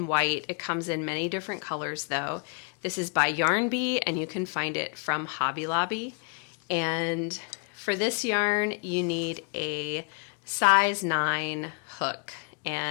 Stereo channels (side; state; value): right; quieter; 37.1 dB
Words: white. It comes in many different colors though. This is by Yarn Bee, and you can find it from Hobby Lobby. And for this yarn, you need a size 9 hook,